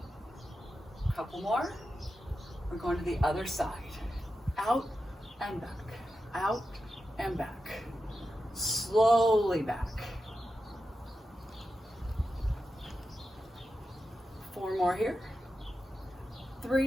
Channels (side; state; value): both; normal; correlation 0.90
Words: A couple more. We're going to the other side. Out and back. Out and back. Slowly back. 4 more here.